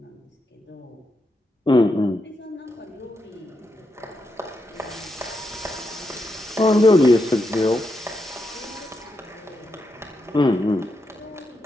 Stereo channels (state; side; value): normal; both; correlation 0.84